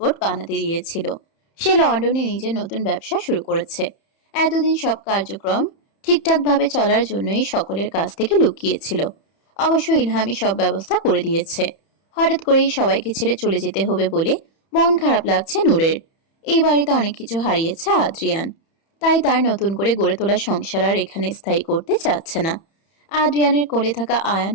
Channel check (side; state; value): right; late; 31 ms